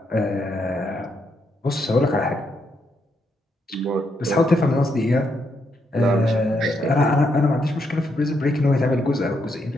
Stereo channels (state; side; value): normal; both; correlation 0.78